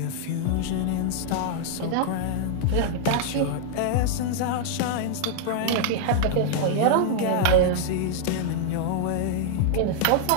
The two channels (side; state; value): both; different; correlation -0.01